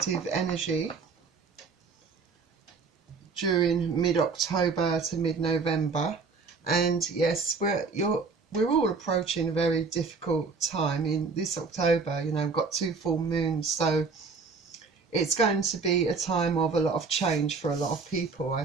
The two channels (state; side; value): quieter; left; 4.7 dB